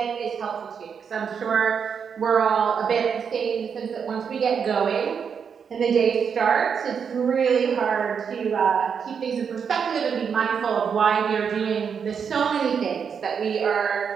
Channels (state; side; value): quieter; left; 6.8 dB